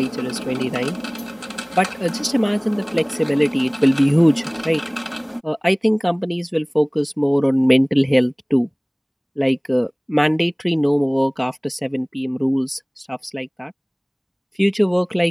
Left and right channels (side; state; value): both; identical; correlation 1.00